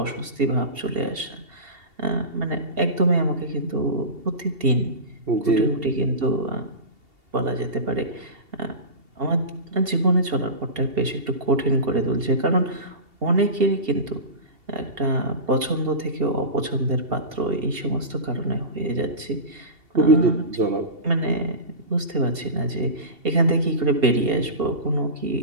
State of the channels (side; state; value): left; late; 2.8 ms